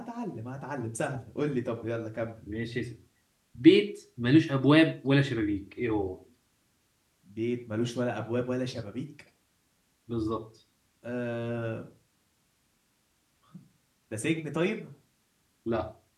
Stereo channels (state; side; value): identical; both; correlation 1.00